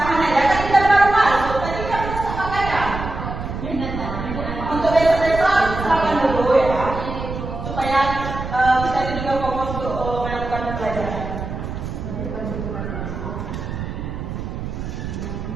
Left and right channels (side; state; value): right; noise; rumble, 6 dB below the sound